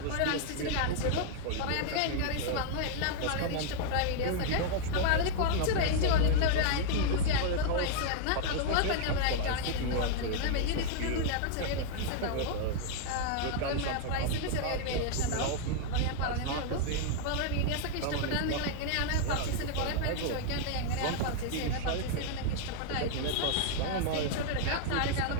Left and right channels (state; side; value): different; both; correlation 0.00